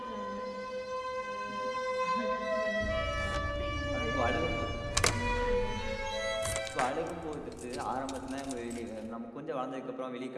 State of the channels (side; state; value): both; identical; correlation 1.00